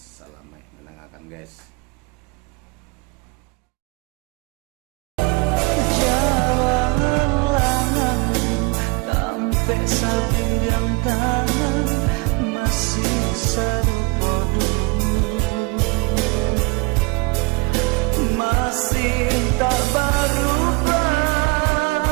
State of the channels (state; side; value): quieter; left; 26.4 dB